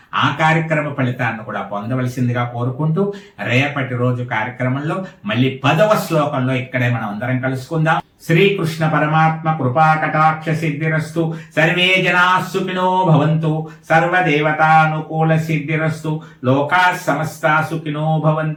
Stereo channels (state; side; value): identical; both; correlation 1.00